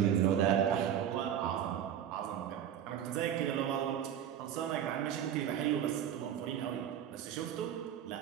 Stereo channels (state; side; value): quieter; left; 9.8 dB